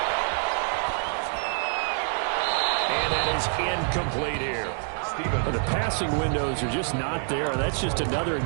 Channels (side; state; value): left; silent; 61 dB below the other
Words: And that is incomplete here. The passing windows are just not there. That's just another